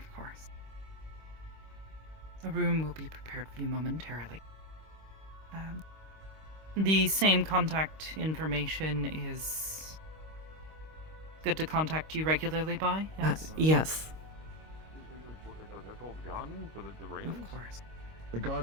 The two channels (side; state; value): left; late; 25 ms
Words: course. A room will be prepared for you momentarily. The same contact information is good to contact you regularly by? Yes? Yes. Of course. The